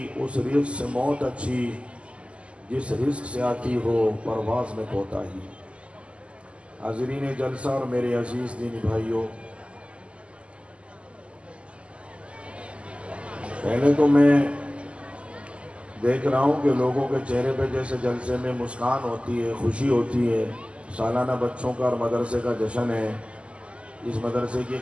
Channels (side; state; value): left; late; 0.055 ms